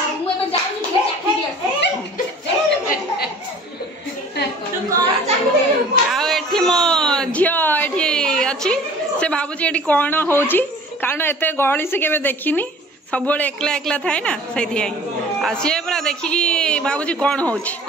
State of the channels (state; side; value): normal; both; correlation 0.47